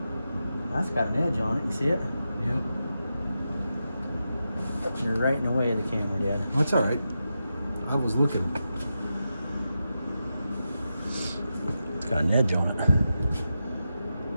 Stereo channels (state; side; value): inverted; both; correlation -0.89